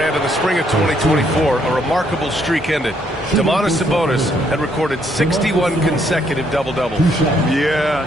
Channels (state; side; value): normal; both; correlation 0.71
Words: in the spring of 2024, a remarkable streak ended. Domantas Sabonis had recorded 61 consecutive double-doubles. Yeah,